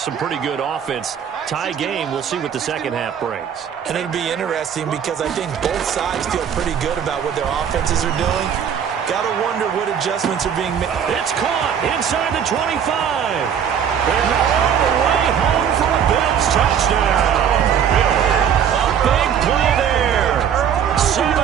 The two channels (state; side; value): quieter; left; 8.3 dB